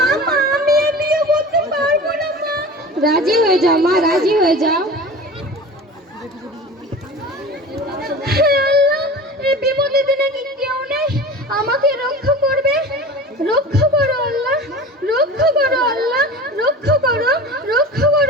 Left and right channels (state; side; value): normal; both; correlation 0.35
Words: মা আমি এই বিয়ে করতে পারবো না মা। রাজি হয়ে যাও মা, রাজি হয়ে যাও। এই বিপদের দিনে কি কেউ নেই আমাকে রক্ষা করবে? রক্ষা করো আল্লাহ, রক্ষা করো আল্লাহ, রক্ষা করো, রক্ষা